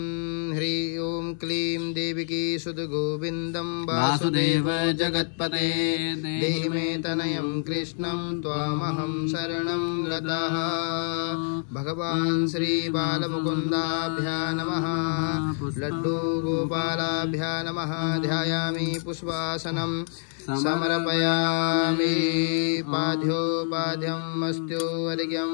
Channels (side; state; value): right; silent; 60 dB below the other